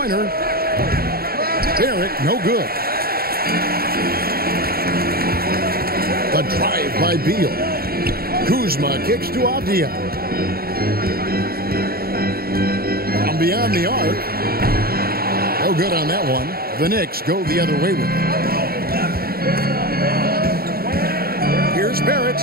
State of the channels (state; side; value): late; left; 0.44 ms